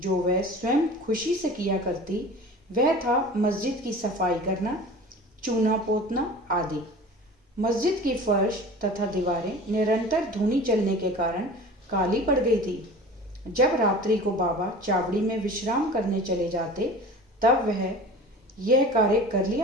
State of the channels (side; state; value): both; normal; correlation 0.39